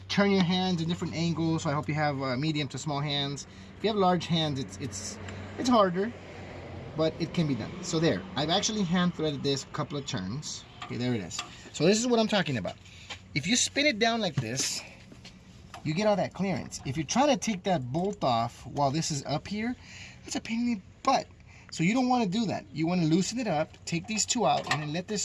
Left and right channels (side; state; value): both; identical; correlation 1.00